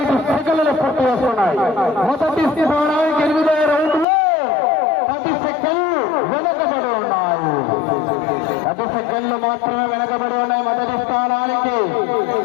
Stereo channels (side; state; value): right; drops out; at 4.0 s